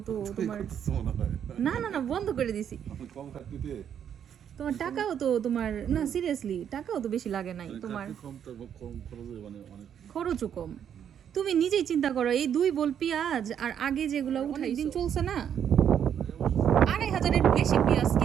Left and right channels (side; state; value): left; quieter; 8.8 dB